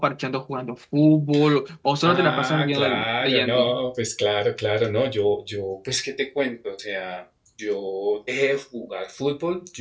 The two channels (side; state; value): both; identical; correlation 1.00